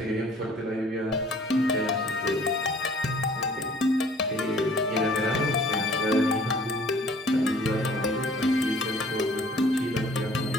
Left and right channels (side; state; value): both; normal; correlation 0.54